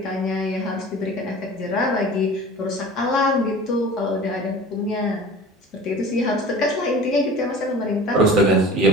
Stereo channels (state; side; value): normal; both; correlation 0.41